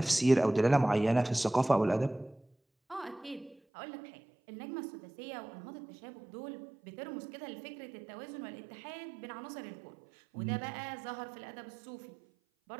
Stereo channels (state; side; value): drops out; left; at 3.6 s